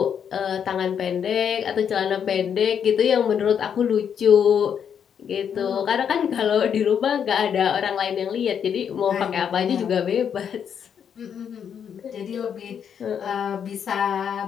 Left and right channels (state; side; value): quieter; right; 7.9 dB